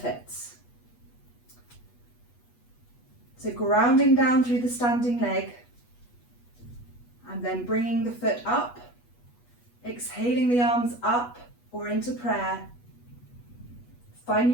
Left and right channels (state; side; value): late; right; 8.3 ms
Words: So grounding down through the standing leg and then bringing the foot up, exhaling the arms up or into prayer.